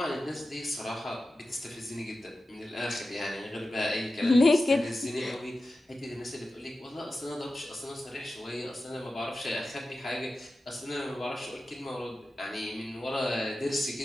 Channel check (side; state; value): both; normal; correlation 0.93